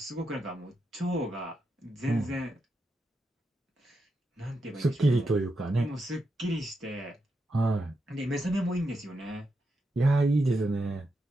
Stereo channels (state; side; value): normal; both; correlation 0.85